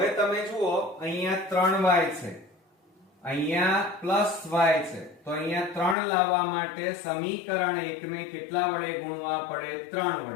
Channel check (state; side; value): drops out; right; at 6.0 s